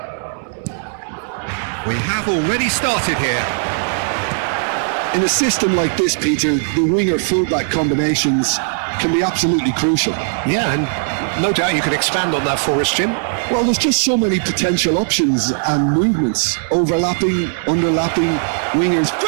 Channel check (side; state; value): left; silent; digital silence